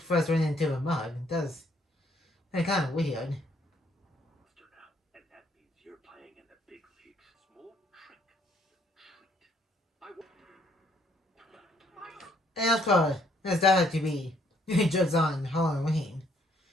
ran into the mug? That's kind of weird. And of course, there's that to be jokes on Halloween.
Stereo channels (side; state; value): both; normal; correlation 0.67